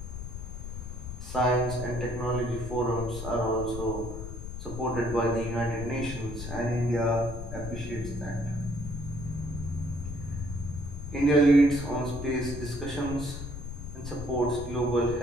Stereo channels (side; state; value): left; noise; rumble, 8 dB below the sound